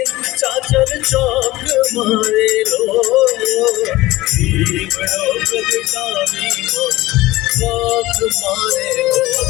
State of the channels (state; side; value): quieter; right; 18.2 dB